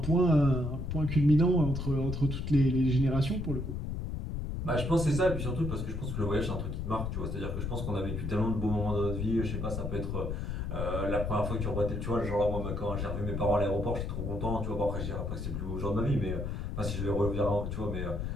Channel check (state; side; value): noise; left; rumble, 3 dB below the sound